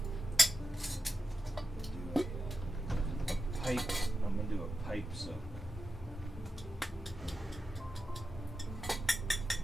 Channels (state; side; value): normal; both; correlation 0.91